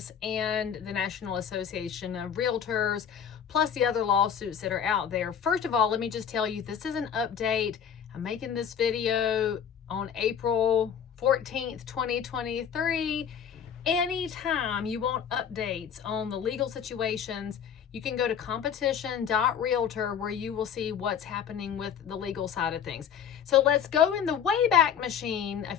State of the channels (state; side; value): quieter; right; 8.0 dB